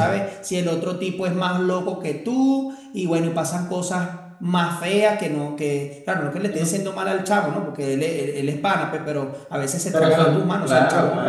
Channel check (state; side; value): identical; both; correlation 1.00